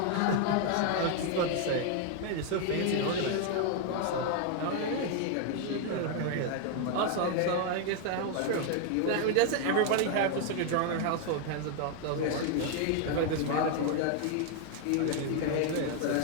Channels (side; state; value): both; different; correlation 0.00